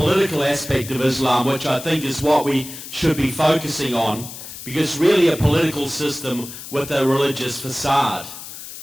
aspect of Islam, which I think is what we should be focusing on, because really a political system with a religious facade.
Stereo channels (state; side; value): noise; left; hiss, 12 dB below the sound